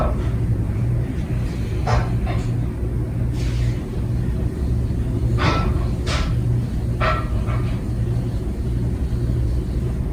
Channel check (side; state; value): both; identical; correlation 1.00